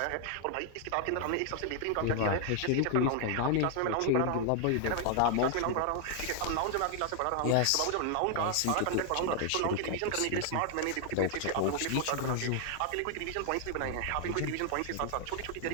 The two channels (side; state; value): both; different; correlation 0.00